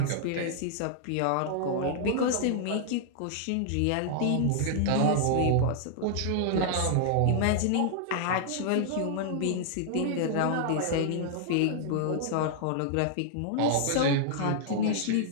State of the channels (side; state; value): both; different; correlation -0.01